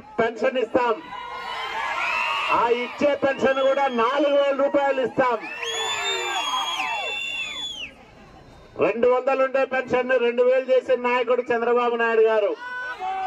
పెన్షన్ ఇస్తాం. ఆ ఇచ్చే పెన్షన్ కూడా 4,000 రూపాయలు ఇస్తాం. 200 ఉండే పెన్షన్ 2,000 చేసిన నాయకుడు చంద్రబాబు నాయుడు గారు.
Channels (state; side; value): identical; both; correlation 1.00